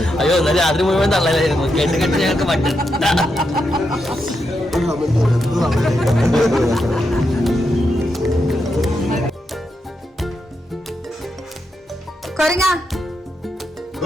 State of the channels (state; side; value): normal; both; correlation 0.84